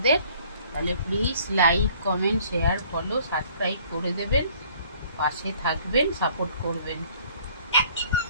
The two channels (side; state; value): both; inverted; correlation -0.56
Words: তাহলে please like, comment, share, follow, subscribe করে দেবেন, পাশে থাকবেন, সাপোর্ট করবেন।